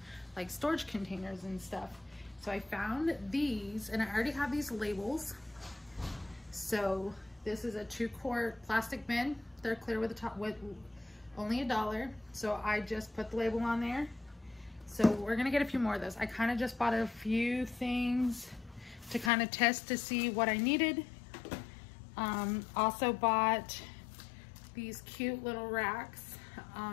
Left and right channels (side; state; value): right; drops out; at 19.3 s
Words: like storage containers and stuff. So I found these, and I already have these labels. So this is a 2-quart plastic bin. They're clear with the top, with only $1. So I just put the label on there. So we're gonna get a few more of those. I kind of just bought a few things to kind of test to see what I needed. Also bought these cute little racks,